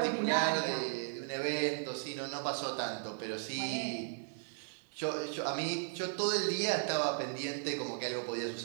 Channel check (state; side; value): silent; left; digital silence